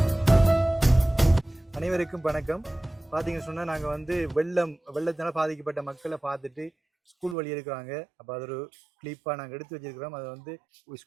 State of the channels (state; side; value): drops out; left; at 7.4 s